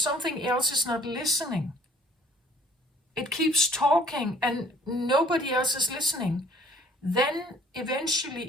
else is not listening, it keeps talking and nobody else is listening, then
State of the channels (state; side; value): normal; both; correlation 0.56